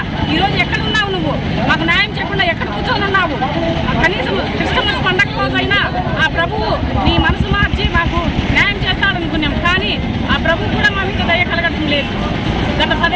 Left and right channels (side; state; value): both; identical; correlation 1.00